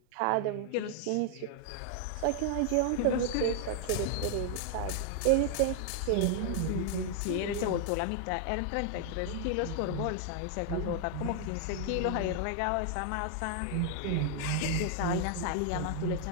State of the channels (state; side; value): different; both; correlation 0.00